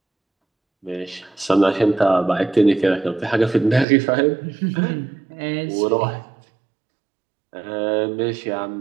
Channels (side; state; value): left; drops out; at 3.9 s